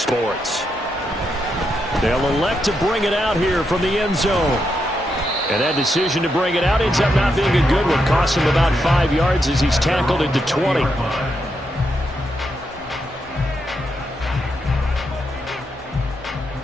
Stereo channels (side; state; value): both; normal; correlation 0.82